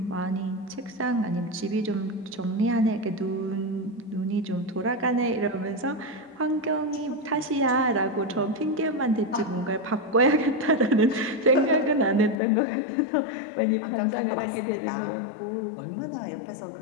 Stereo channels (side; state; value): right; drops out; at 12.4 s